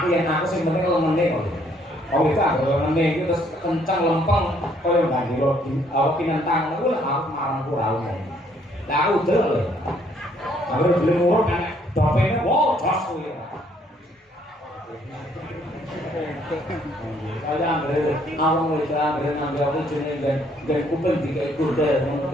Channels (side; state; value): both; normal; correlation 0.66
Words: yen aku sing penting lemene kok. Oh itu aku lemene iki terus kenceng lempeng koyo bandiro aku kinentang aku lah aku marang kurang. Lah aku delok lho. Aku belum urut kan dopene wow jos kuwi. Kaya ambil awang itu ambil ngambil aku jenenge dan kuping dikai kuda ngono